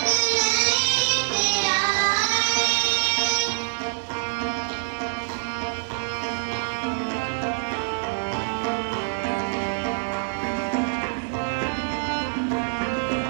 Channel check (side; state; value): left; silent; digital silence